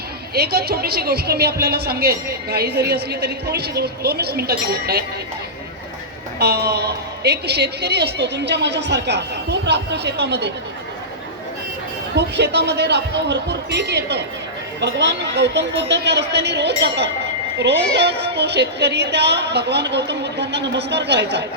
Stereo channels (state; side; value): normal; both; correlation -0.14